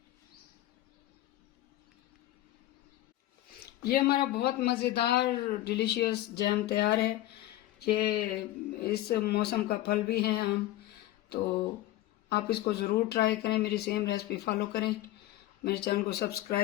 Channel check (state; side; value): quieter; right; 15.3 dB